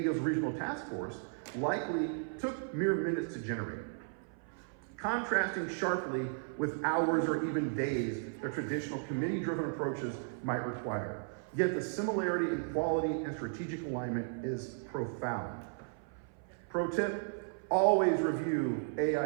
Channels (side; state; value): left; silent; 54 dB below the other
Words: Regional Task Force, likely took mere minutes to generate, contrasting sharply with hours or even days that traditional committee-driven approaches might require. Yet the similarity in quality and strategic alignment is profound. Pro tip, always review